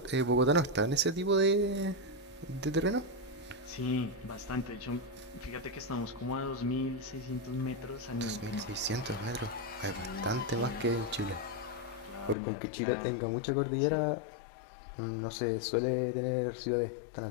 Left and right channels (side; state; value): right; drops out; at 12.4 s